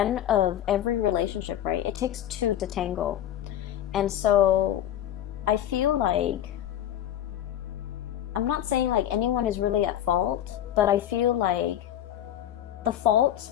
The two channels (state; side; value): quieter; right; 11.3 dB